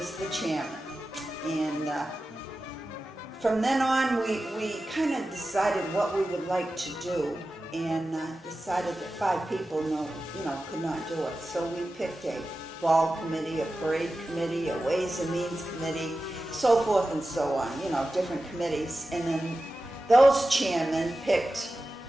the chairman. And from then on, we kind of decided what we would like to do, and decided that 5 people could not do it. So we picked a ball committee, a parade committee, a ways and means committee, so forth and so on, different committees. And then those chairmen picked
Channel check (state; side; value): normal; both; correlation 0.94